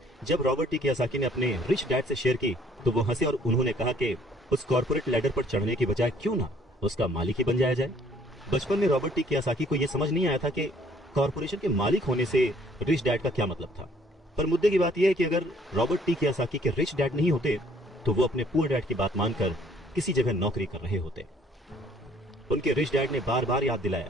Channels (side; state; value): both; normal; correlation 0.60